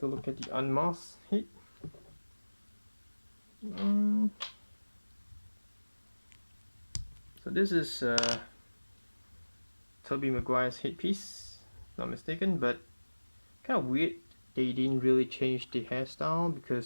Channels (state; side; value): inverted; both; correlation -1.00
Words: a look at the unmasked head. So this is Toby Maguire's headpiece, if not mistaken, but kind of weird they didn't really change the hairstyle,